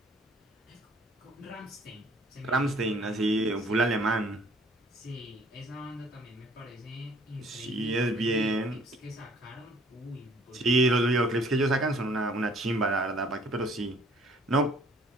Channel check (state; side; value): normal; both; correlation 0.57